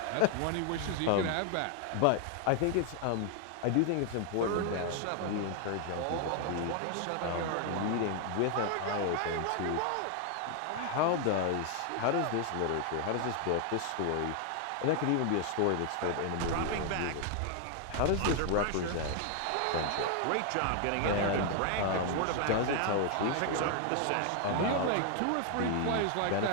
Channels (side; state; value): both; different; correlation 0.00